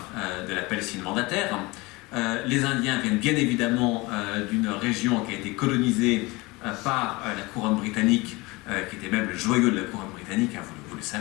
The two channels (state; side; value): quieter; right; 23.5 dB